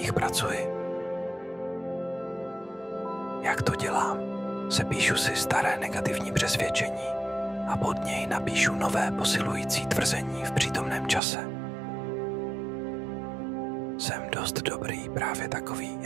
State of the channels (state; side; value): drops out; left; at 11.2 s